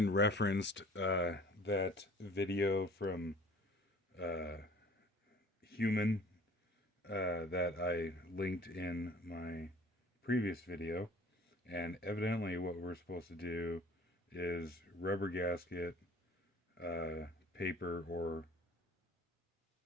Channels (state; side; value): normal; both; correlation 0.49